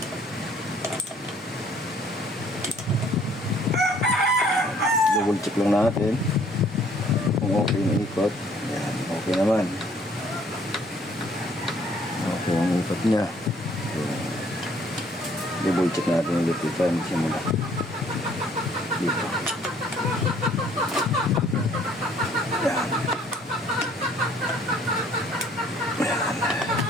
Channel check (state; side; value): normal; both; correlation 0.60